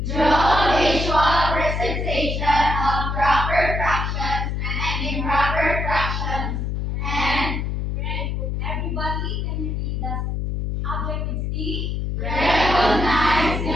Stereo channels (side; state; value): left; noise; hum, 1 dB below the sound